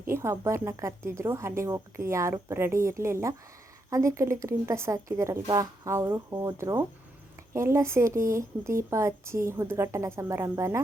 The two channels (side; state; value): both; normal; correlation 0.81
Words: ಒಬ್ಬರನ್ನ ಕರೆದಿದ್ರು. ಅಲ್ಲಿಗೆ ಹೋಗೋಕ್ಕೆ ಯಾರೂ ರೆಡಿ ಇರಲಿಲ್ಲ. ಅದಕ್ಕೆ ಅಲ್ಲಿ ಗ್ರೀನ್ ಡ್ರೆಸ್ ಹಾಕಿದಾರಲ್ವ, ಅವರು ಹೋದರು. ಎಲ್ಲ ಸೇರಿ ದೀಪ ಹಚ್ಚಿ ಉದ್ಘಾಟನಾ ಸಮಾರಂಭನ